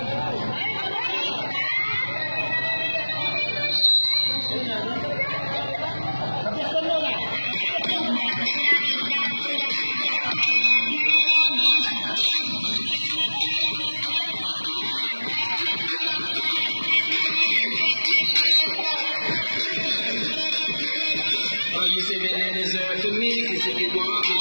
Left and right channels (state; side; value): inverted; both; correlation -1.00